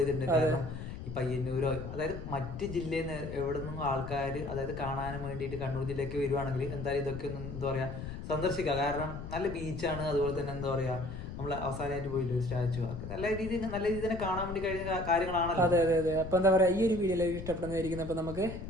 ചെയ്തിട്ടുണ്ട്. കാരണം ഈ പയ്യന്നൂരോ അതായത് മറ്റ് ജില്ലയിൽ നിന്ന് എവിടെ നിന്നും ആൾക്കാർ അതായത് കാണാനും വേണ്ടിയിട്ട് കണ്ണൂർ ജില്ലയ്ക്ക് വരുവാണെങ്കിൽ എന്തായാലും ഇതൊക്കെ ഒന്ന് എന്താ പറയുക സന്ദർശിക്കുക. കാരണം നല്ല ബീച്ചാണ്. അതുപോലെ തന്നെ എന്താ പറയുക, നമ്മൾ അവസാനമായിട്ട് പോയില്ല ഒരു സ്റ്റാച്ചു ഒക്കെ നല്ല രീതിയിൽ തന്നെ കാണാൻ വേണ്ടി കഴിഞ്ഞ കാര്യങ്ങളാണല്ലോ. അതെ അതെ അതെ. അപ്പൊ എന്താ പറയാ, ഈ ഒരു വീഡിയോ ഇഷ്ടപ്പെടുന്നതായിരിക്കും. അപ്പൊ നമുക്ക്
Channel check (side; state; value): left; noise; rumble, 8 dB below the sound